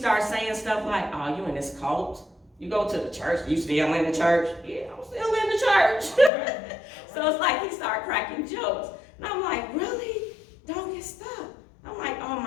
saying stuff like, oh, you in this cult? You go to the church, you still in the church? Yeah, I'm still in the church. So it's like he started cracking jokes. And I'm like, really? Don't get stuck. I'm like, oh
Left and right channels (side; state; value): right; drops out; at 6.3 s